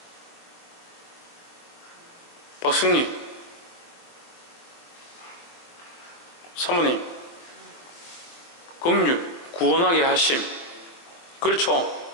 박승리 사모님 긍휼 구원하게 하심. 그렇죠.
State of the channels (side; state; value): right; late; 23 ms